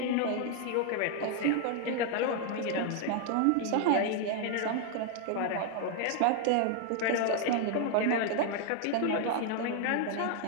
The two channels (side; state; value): both; different; correlation 0.00